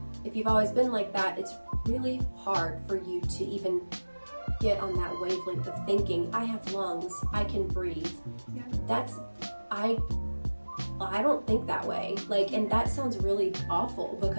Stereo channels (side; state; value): both; inverted; correlation -1.00